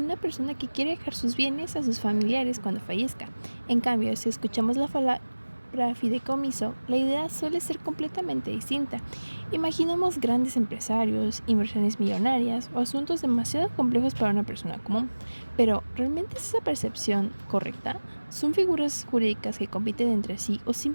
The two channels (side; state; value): both; inverted; correlation -1.00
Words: una persona que quiere dejar sus bienes a sus familiares cuando fallezca. En cambio, si escuchamos la palabra fideicomiso, la idea suele ser completamente distinta. Imaginamos grandes empresarios, inversiones millonarias o asuntos demasiado complejos para una persona común. Pero, ¿realmente es esa percepción correcta? ¿Son figuras jurídicas que compiten entre sí o